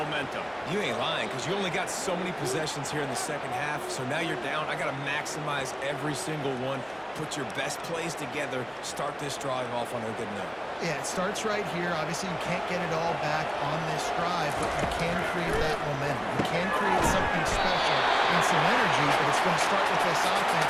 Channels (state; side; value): identical; both; correlation 1.00